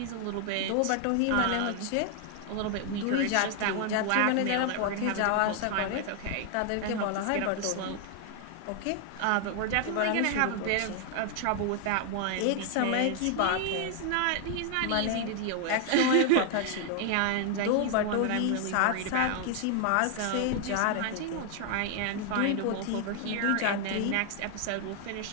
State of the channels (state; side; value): different; both; correlation 0.00